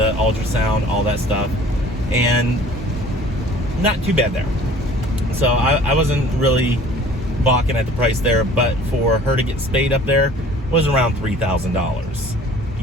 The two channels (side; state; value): both; normal; correlation 0.49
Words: ultrasound, all that stuff, and not too bad there. So I wasn't really balking at the price there, but for her to get spayed up there was around $3,000.